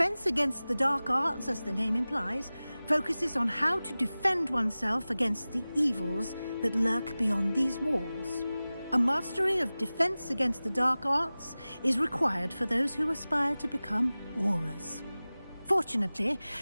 Against the Dark Arts, as the name implies, focuses on how to defend oneself against the evils that lurk beyond these walls. A mastery of Defense Against the Dark Arts is required for those who aspire to become Aurors. Fortunately,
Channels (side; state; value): both; inverted; correlation -0.97